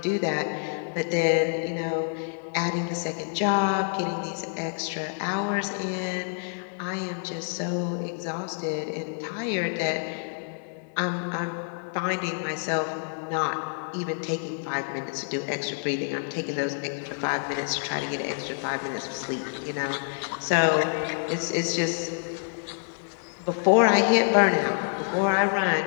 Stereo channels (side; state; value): right; silent; 60 dB below the other